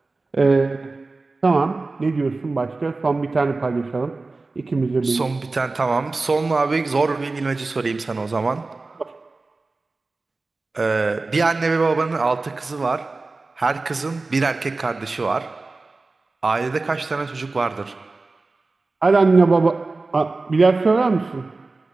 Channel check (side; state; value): left; quieter; 3.5 dB